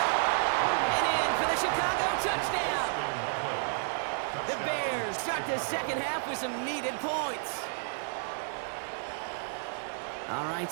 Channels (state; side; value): silent; left; digital silence